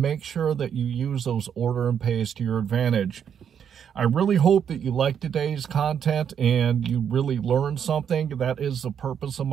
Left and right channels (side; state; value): left; quieter; 8.2 dB